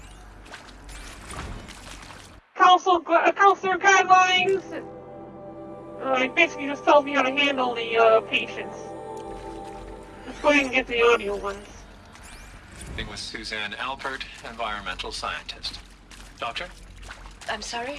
Counselor guidelines. It basically just tells me how to handle the patients. Let's go ahead and get the audio ones. With Suzanne Alpert, environmental scientist. Doctor? I'm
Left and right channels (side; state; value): both; identical; correlation 1.00